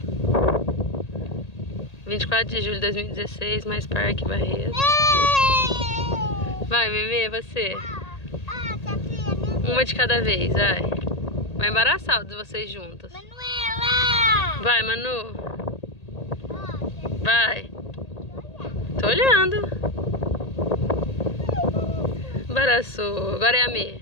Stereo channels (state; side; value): late; right; 1.8 ms